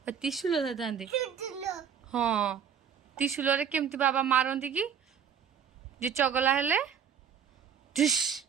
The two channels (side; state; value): left; quieter; 7.8 dB